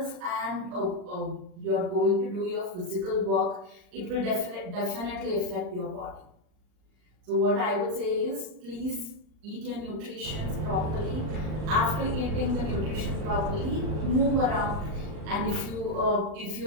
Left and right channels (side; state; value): left; late; 39 ms